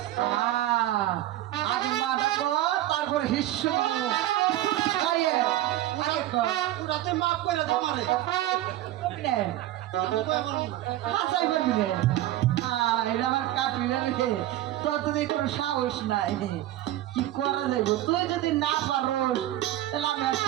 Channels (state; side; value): quieter; left; 14.4 dB